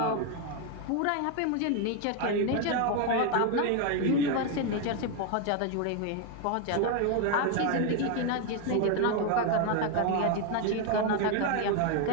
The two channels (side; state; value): both; different; correlation 0.01